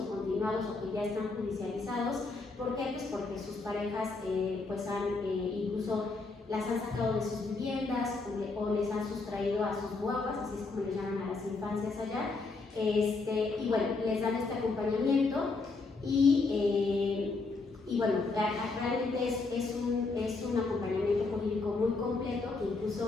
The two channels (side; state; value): right; quieter; 3.8 dB